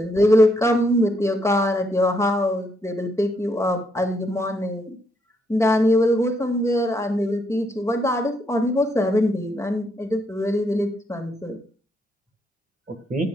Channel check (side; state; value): both; normal; correlation 0.75